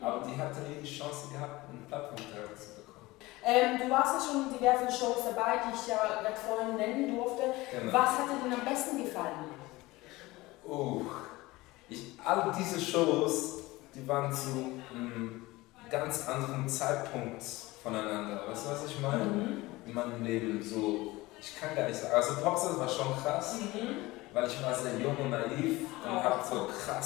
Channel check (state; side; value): quieter; right; 20.3 dB